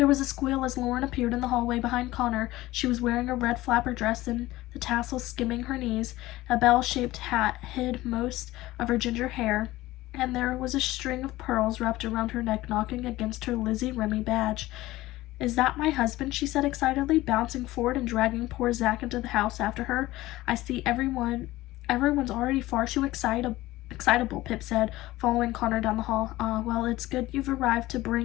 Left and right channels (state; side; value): quieter; right; 17.5 dB